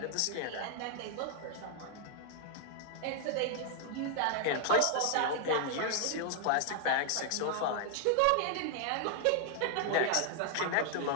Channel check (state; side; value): different; both; correlation 0.00